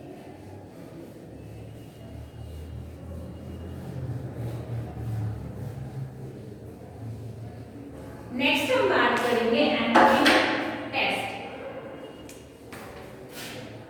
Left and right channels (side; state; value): both; identical; correlation 1.00